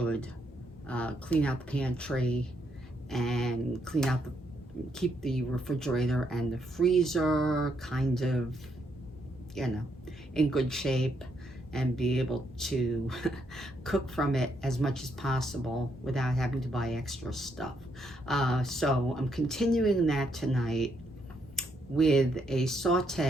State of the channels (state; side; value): normal; both; correlation 0.76